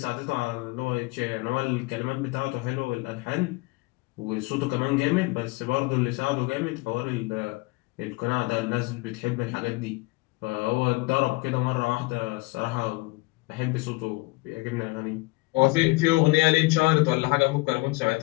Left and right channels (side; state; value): right; quieter; 23.8 dB